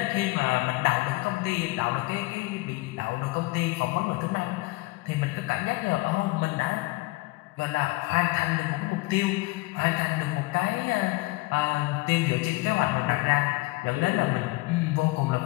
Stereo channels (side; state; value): right; quieter; 22.4 dB